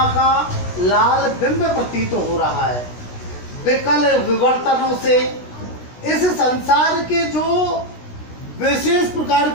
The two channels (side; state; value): right; late; 16 ms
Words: का लाल बिंब प्रतीत हो रहा है। विकल विवर्तनों से इस संसार के जो विशेष प्रकार